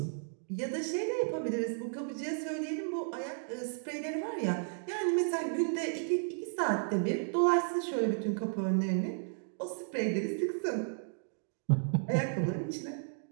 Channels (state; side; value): silent; left; digital silence